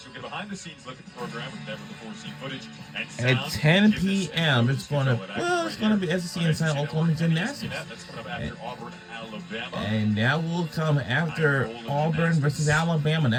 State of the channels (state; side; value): identical; both; correlation 1.00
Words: You'll get behind-the-scenes look at the program with never before seen footage and At 10 p.m., it's gonna be SEC Inside Oklahoma Gymnastics, That's coming up after Auburn, Alabama. and that will come after Auburn versus Alabama.